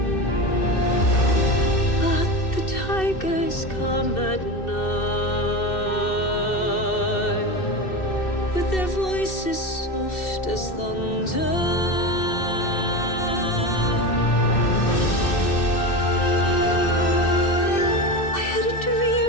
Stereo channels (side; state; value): right; late; 2.6 ms